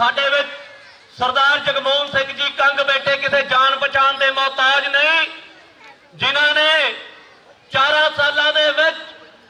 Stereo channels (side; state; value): both; identical; correlation 1.00